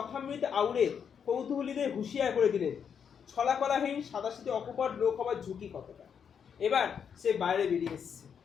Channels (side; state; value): right; quieter; 7.4 dB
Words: আউড়ে কৌতূহলীদের হুঁশিয়ার করে দিলেন ছলাকলাহীন সাদাসিধে অকপট লোক হবার ঝুঁকি কতটা। এবার সে বাইরে বেরিয়ে এসছে,